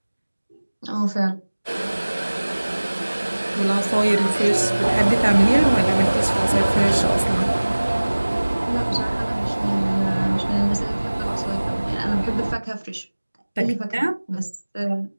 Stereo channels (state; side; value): inverted; both; correlation -1.00